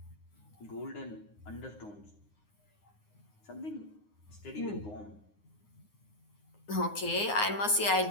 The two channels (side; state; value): right; late; 9.6 ms